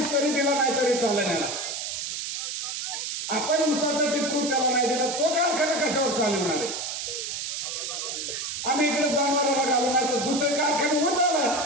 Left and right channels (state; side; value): noise; right; hiss, 4 dB below the sound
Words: तरी दिला नाही तरी चालेल. आपण ऊसाचा टिपरू त्याला नाही दिला, तो कारखाना कशावर चालवणार आहे? आम्ही इकडे जनावराला घालू नाही तर दुसरे कारखाने होत आला,